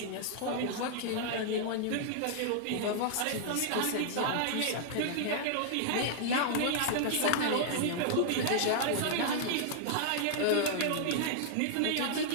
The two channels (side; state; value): both; different; correlation -0.01